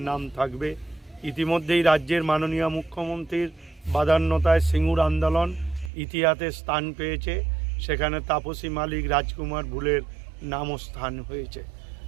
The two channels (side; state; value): left; drops out; at 5.9 s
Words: নাম থাকবে। ইতিমধ্যেই রাজ্যের মাননীয় মুখ্যমন্ত্রীর বাদান্যতায় সিঙ্গুর আন্দোলন ইতিহাসে স্থান পেয়েছে, সেখানে তাপসী মালিক, রাজকুমার ভুলের নামও স্থান হয়েছে।